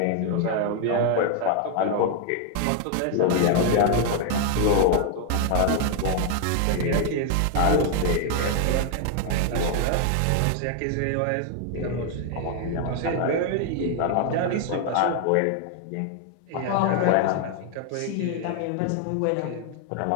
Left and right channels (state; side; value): different; both; correlation 0.00